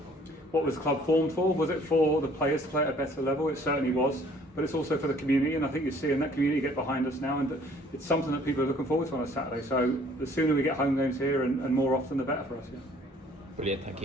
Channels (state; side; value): normal; both; correlation 0.57